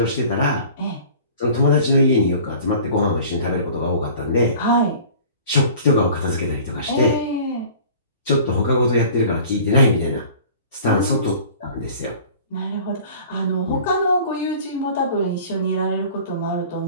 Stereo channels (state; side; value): inverted; both; correlation -0.45